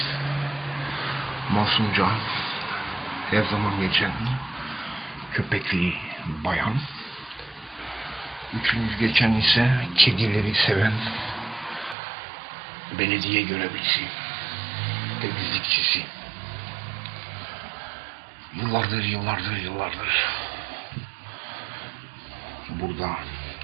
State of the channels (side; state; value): left; drops out; at 12.0 s